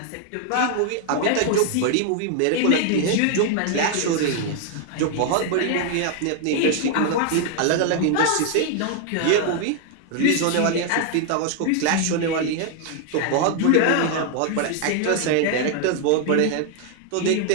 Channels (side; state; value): both; different; correlation 0.00